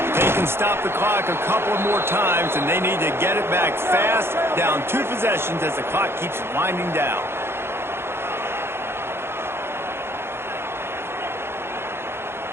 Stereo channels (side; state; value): left; late; 0.12 ms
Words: They can stop the clock a couple more times, and they need to get it back fast, down 2 possessions as the clock keeps winding down.